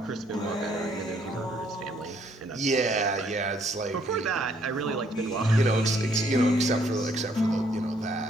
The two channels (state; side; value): normal; both; correlation 0.67